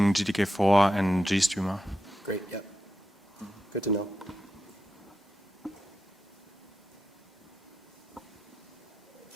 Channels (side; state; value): both; normal; correlation 0.88